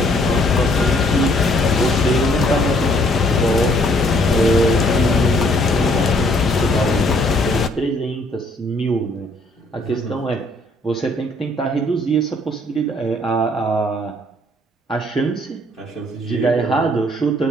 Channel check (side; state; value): both; normal; correlation 0.63